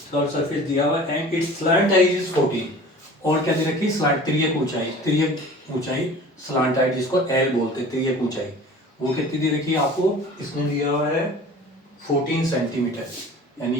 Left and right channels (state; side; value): normal; both; correlation 0.42